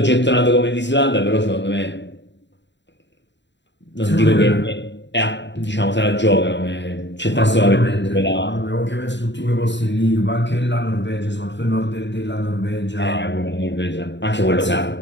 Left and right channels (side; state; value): right; late; 0.52 ms